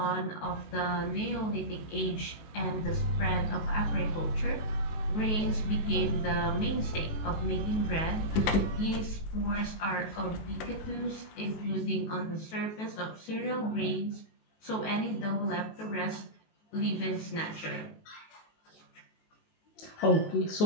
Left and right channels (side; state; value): right; late; 19 ms